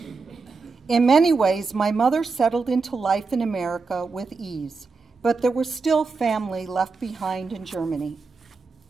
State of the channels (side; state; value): left; quieter; 4.3 dB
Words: In many ways, my mother settled into life in America with ease, but there was still family left behind in Germany.